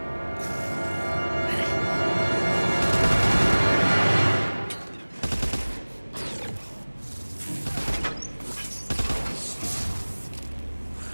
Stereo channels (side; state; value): both; inverted; correlation -1.00